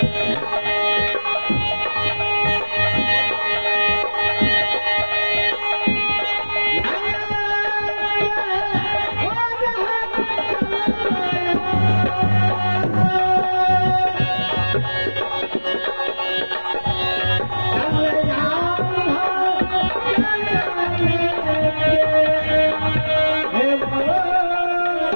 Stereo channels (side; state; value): both; inverted; correlation -1.00